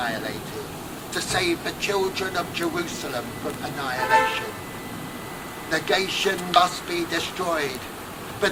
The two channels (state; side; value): identical; both; correlation 1.00